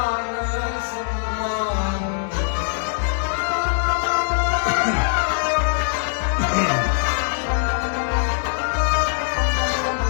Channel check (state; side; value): silent; right; digital silence